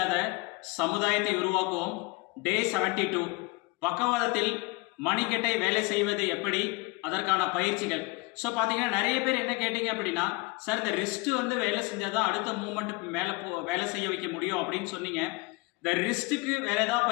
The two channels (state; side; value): quieter; right; 26.0 dB